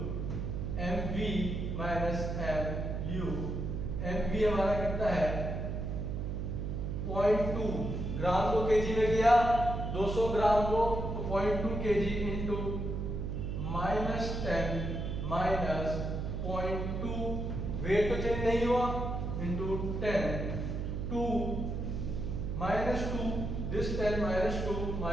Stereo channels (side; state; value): right; noise; hum, 3 dB below the sound